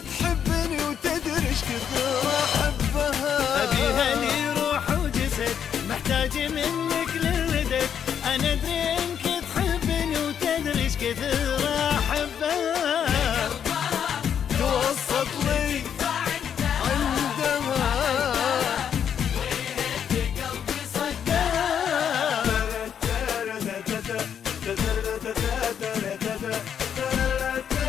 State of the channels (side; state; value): right; quieter; 8.4 dB